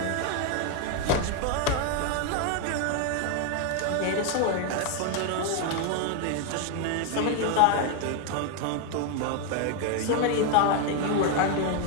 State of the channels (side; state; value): both; different; correlation 0.01